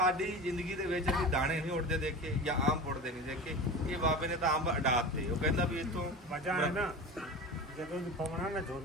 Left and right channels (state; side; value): normal; both; correlation 0.31